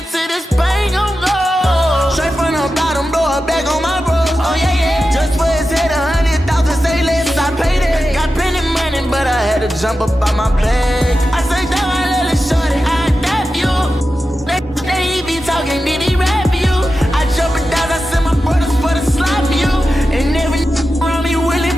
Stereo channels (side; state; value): both; normal; correlation 0.92